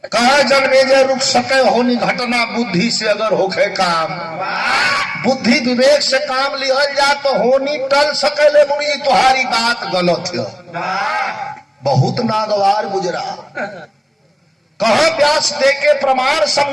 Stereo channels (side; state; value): both; identical; correlation 1.00